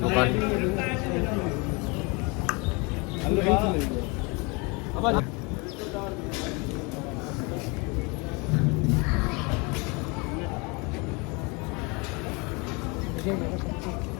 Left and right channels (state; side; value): quieter; right; 28.8 dB